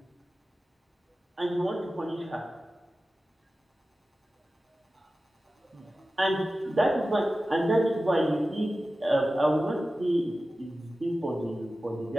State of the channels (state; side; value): normal; both; correlation 0.95